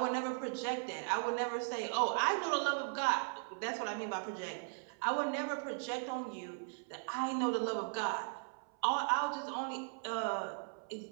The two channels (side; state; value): left; silent; 52 dB below the other